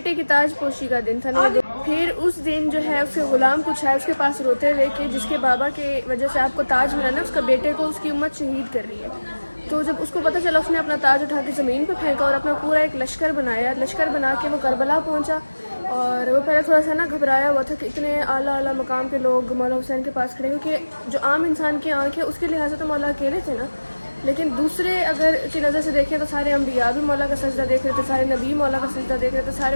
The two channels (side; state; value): both; inverted; correlation -1.00